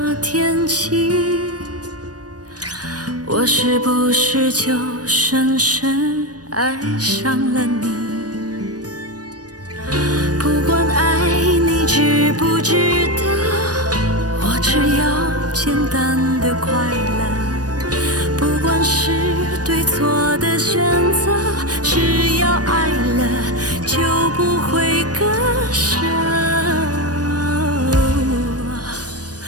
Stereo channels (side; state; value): left; late; 0.68 ms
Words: 天起，我是不是就深深爱上了你？不管爱你值不值得，我只要简单的快乐。不管是对错的选择，只要爱了就不会割舍。